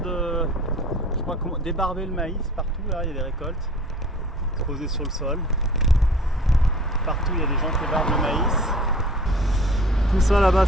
débarber le maïs partout. Là, il y a des récoltes exposées sur le sol. Partout, il y a des gens qui débarbent le maïs. Tout ça là-bas,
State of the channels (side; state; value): both; normal; correlation 0.46